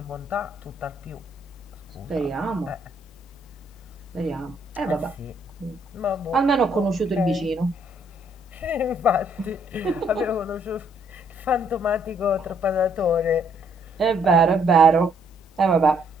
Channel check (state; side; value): normal; both; correlation 0.68